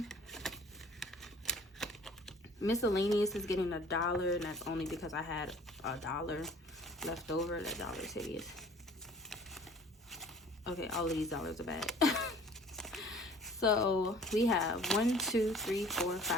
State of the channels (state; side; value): normal; both; correlation 0.50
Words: Miscellaneous is getting $1, and that's only because I had $1 left over. That dollar is hideous. Okay, all of these dollars are bad. So we have $1, $2, $3, $4,